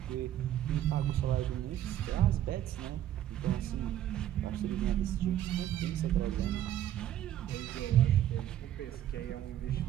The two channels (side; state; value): left; quieter; 11.8 dB